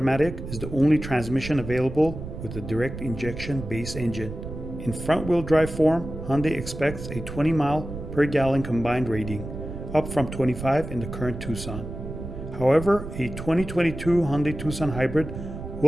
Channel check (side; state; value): right; noise; rumble, 9 dB below the sound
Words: is the only transmission available with a direct injection base engine. In front-wheel drive form, Hyundai expects a 20 mile per gallon combined rating, up from 25 in the current Tucson. However, a 2022 Hyundai Tucson hybrid